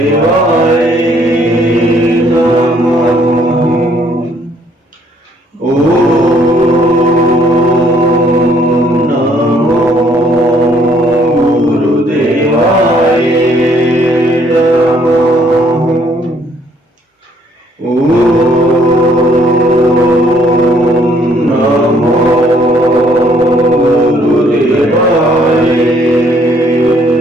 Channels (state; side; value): normal; both; correlation 0.65